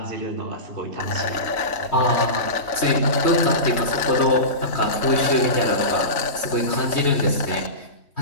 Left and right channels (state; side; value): late; right; 3.2 ms